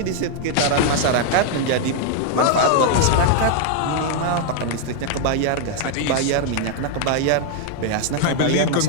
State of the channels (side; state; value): both; different; correlation 0.00